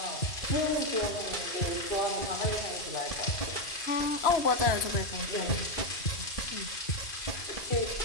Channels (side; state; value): right; late; 2.5 ms